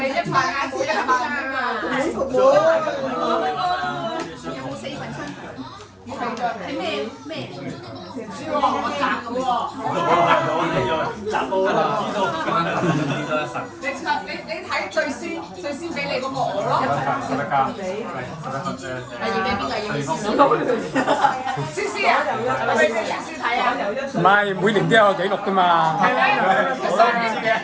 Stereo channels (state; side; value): identical; both; correlation 1.00